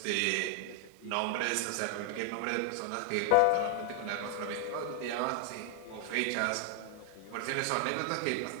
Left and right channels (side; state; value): both; different; correlation 0.00